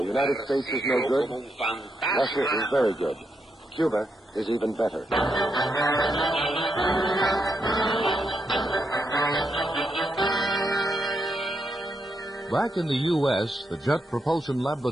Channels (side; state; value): both; normal; correlation 0.81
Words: United States is no good, Russia is very good, Cuba is even better. Back in the U.S., the Jet Propulsion